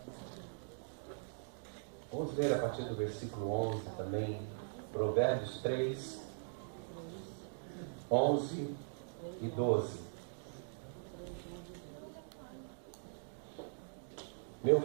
Vamos ler a partir do versículo 11 também. Provérbios 3, 11 e 12. Meu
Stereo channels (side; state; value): left; silent; digital silence